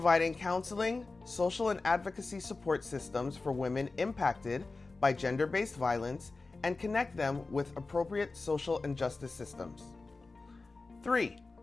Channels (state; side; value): quieter; right; 3.7 dB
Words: counseling, social and advocacy support systems for women impacted by gender-based violence and connect them with appropriate social and justice systems. 3.